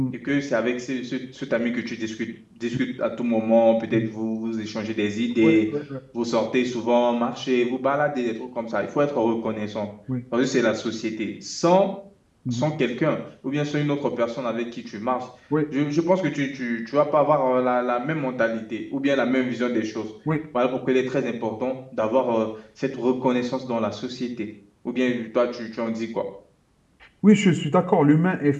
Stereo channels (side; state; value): both; identical; correlation 1.00